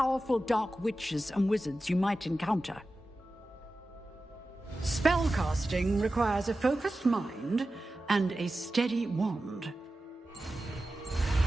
dark witches and wizards you might encounter. Spellcasting requires a focused mind and a steady wand.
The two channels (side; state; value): both; normal; correlation 0.94